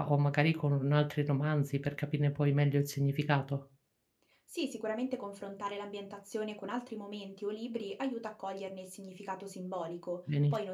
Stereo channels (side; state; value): both; identical; correlation 1.00